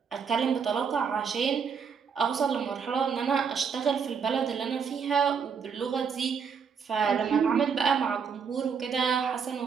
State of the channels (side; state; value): left; quieter; 6.4 dB